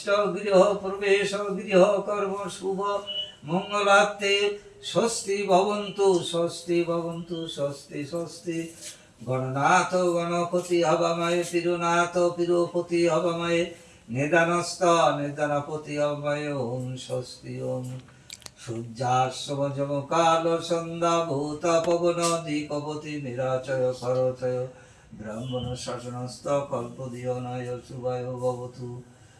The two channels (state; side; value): identical; both; correlation 1.00